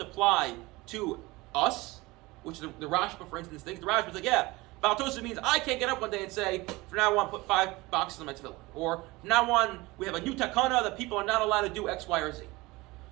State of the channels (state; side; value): quieter; left; 21.8 dB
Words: to us, which the Rashba, for instance, thinks. The Rashba is like, yeah, Bal Tosef means I can't get up one day and say, from now on, put 5 boxes on my tefillah. Or, from now on, we have a new takana that people are not allowed to do X, Y, or Z.